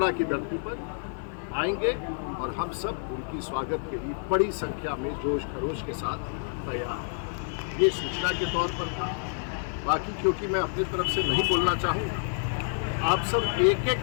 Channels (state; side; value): silent; right; 59 dB below the other